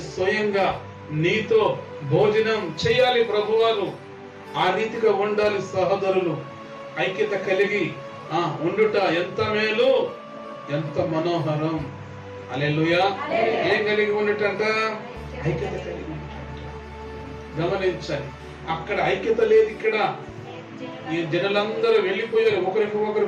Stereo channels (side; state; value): both; identical; correlation 1.00